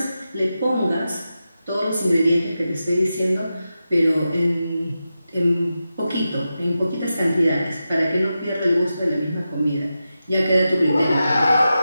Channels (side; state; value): both; inverted; correlation -0.91